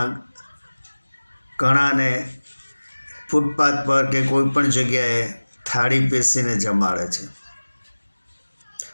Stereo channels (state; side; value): inverted; both; correlation -1.00